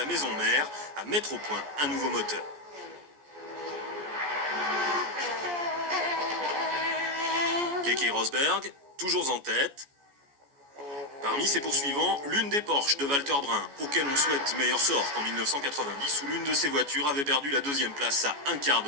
maison mère à mettre au point un nouveau moteur. Keke Rosberg, toujours en tête. Parmi ses poursuivants, l'une des Porsche de Walter Brun, auquel on souhaite meilleur sort qu'en 1990, où l'une de ses voitures avait perdu la 2e place à un quart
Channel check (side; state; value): left; late; 14 ms